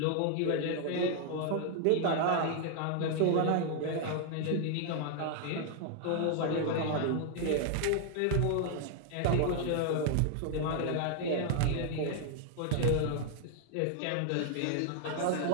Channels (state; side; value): different; both; correlation 0.00